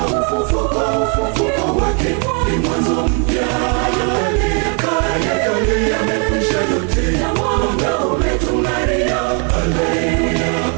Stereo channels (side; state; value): left; quieter; 37.9 dB